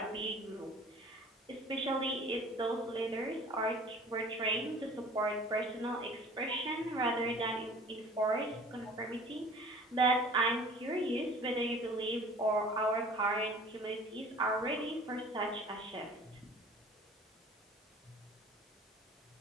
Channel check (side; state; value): both; normal; correlation 0.47